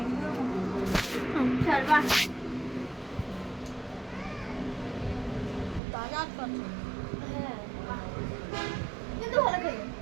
তাজা পাচ্ছি। হ্যাঁ কিন্তু ভালো খাই।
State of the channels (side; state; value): left; drops out; at 5.8 s